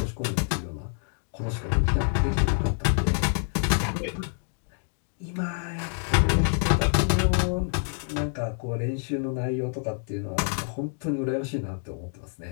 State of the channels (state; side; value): silent; right; 60 dB below the other